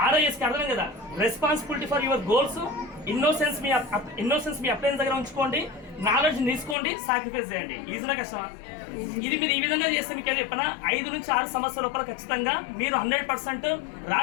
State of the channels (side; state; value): right; drops out; at 6.8 s